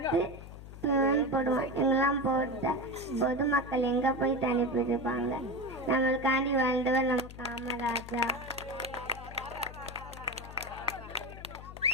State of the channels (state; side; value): noise; left; hum, 14 dB below the sound